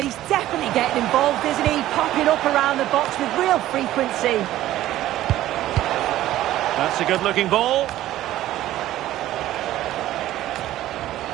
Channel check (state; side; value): quieter; left; 14.2 dB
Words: he's definitely getting involved, isn't he? Popping up around the box with real frequency. That's a good-looking ball.